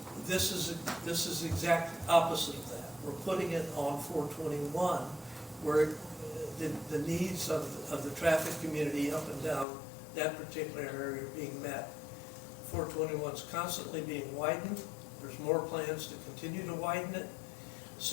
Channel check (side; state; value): right; drops out; at 9.7 s